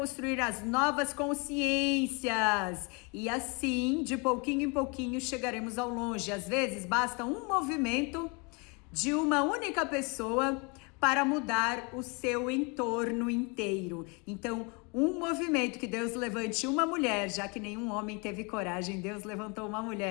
consciências, e assim, de pouquinho em pouquinho, chegaremos ao longe. Às vezes basta um movimento de uma única pessoa para mudar o seu entorno inteiro. Então, um movimento que Deus levante uma mulher, já que nenhum homem teve coragem, Deus levantou uma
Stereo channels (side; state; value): right; quieter; 31.2 dB